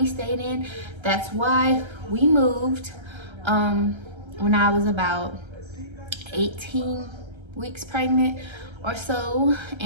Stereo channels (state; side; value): late; left; 1.3 ms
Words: stayed in, that's why we moved when I was about 18 weeks pregnant or so.